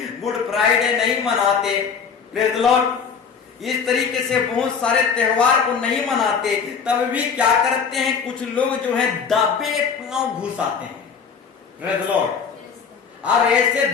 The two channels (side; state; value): right; quieter; 6.3 dB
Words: गुड फ्राइडे नहीं मनाते। Praise Lord. इस तरीके से बहुत सारे त्योहार को नहीं मनाते, तब भी क्या करते हैं? कुछ लोग जो है दबे पांव घुस आते हैं। Praise Lord. और ऐसे